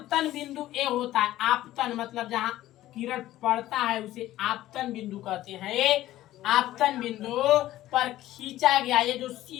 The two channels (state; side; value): quieter; right; 14.7 dB